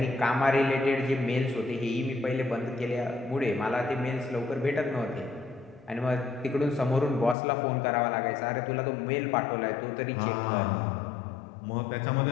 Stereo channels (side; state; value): right; drops out; at 7.4 s